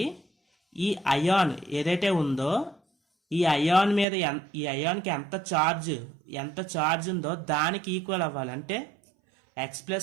ఈ అయాన్ ఏదైతే ఉందో ఈ అయాన్ మీద ఈ అయాన్కి ఎంత ఛార్జ్ ఉందో దానికి ఈక్వల్ అవ్వాలి. అంటే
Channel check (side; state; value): left; drops out; at 4.0 s